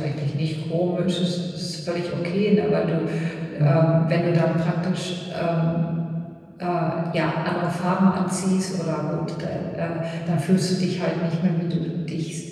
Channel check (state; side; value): identical; both; correlation 1.00